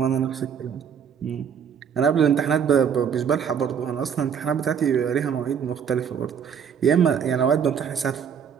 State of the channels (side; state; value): left; quieter; 7.6 dB